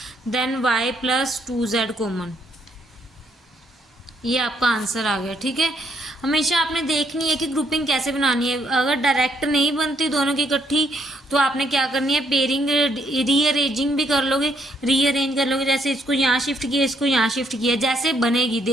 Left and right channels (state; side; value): normal; both; correlation 0.72